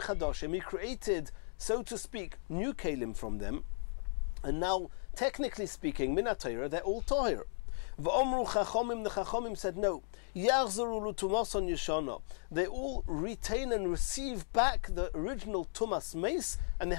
chadashim, he created, so to speak, new kalim from them. And now, technically speaking, min ha-Torah, they're all toher. V'omru chachomim, the chachomim said no. Yachzaru l'tumason yeshana. They all retain and receive back the original tumas meis, and they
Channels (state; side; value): silent; right; digital silence